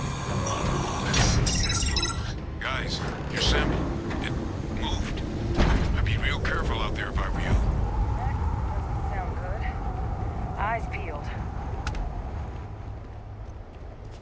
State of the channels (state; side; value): identical; both; correlation 1.00